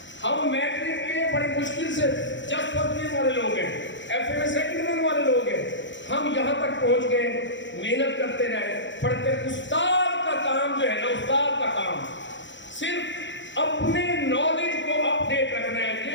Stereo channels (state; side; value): late; right; 0.54 ms